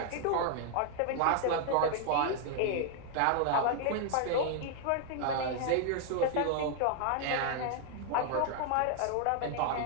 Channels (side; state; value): both; different; correlation 0.00